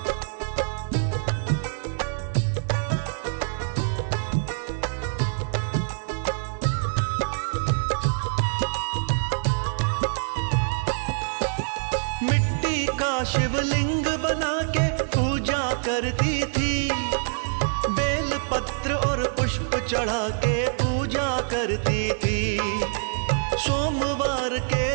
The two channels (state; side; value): silent; left; digital silence